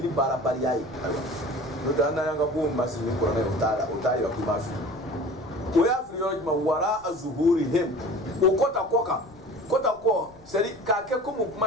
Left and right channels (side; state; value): left; noise; rumble, 26 dB below the sound